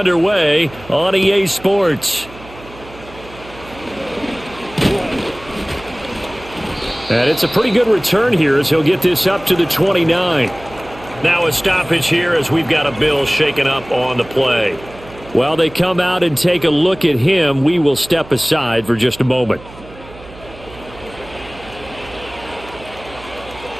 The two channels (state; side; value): noise; right; hum, 19 dB below the sound